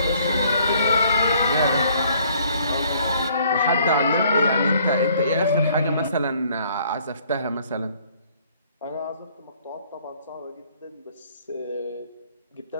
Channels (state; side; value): inverted; both; correlation -0.61